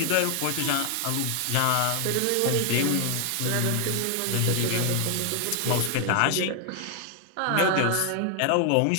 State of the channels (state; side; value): different; both; correlation 0.00